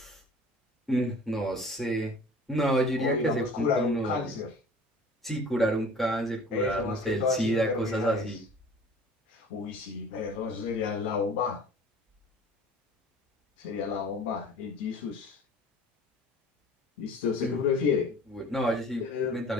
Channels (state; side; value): normal; both; correlation 0.46